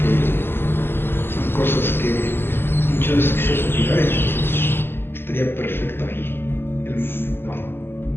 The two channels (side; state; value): right; late; 0.11 ms